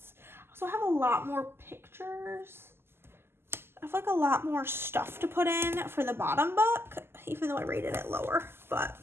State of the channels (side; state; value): left; late; 0.12 ms